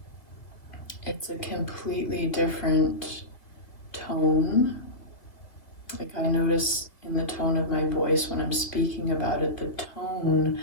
it's a completely different tone. I notice in the tone of my voice when I'm speaking about it, the tone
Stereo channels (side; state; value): right; late; 2.3 ms